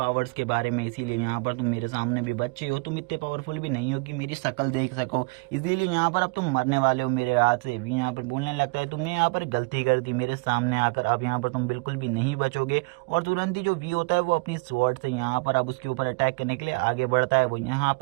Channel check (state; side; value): quieter; left; 31.5 dB